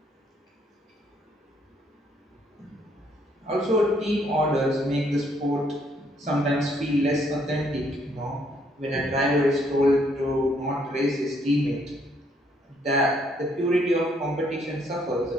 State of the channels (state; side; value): normal; both; correlation 0.69